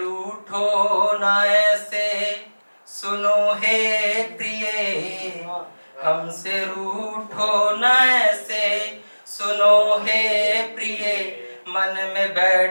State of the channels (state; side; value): inverted; both; correlation -1.00